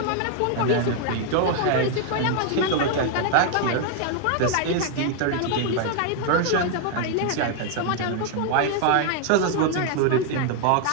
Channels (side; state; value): both; different; correlation 0.00